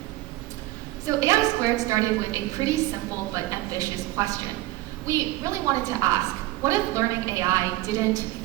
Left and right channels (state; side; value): quieter; left; 17.7 dB